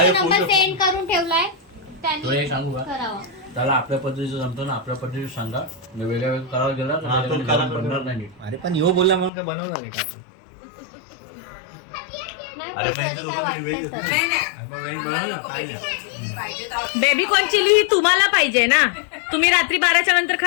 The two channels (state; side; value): drops out; right; at 9.3 s